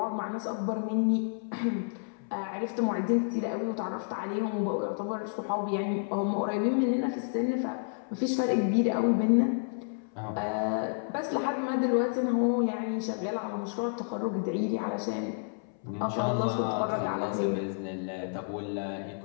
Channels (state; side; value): silent; right; 58 dB below the other